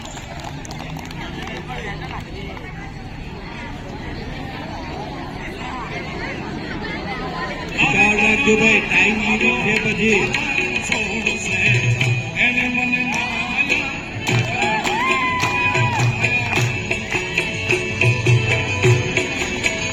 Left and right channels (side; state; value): both; identical; correlation 1.00